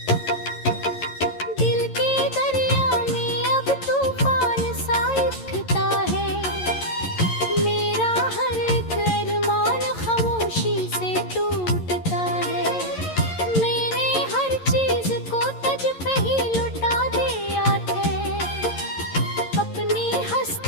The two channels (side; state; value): right; late; 11 ms